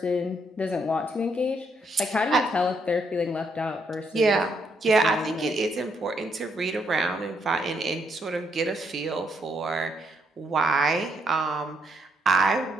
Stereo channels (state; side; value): normal; both; correlation 0.75